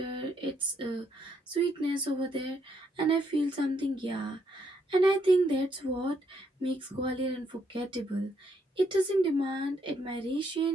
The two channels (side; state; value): both; normal; correlation 0.74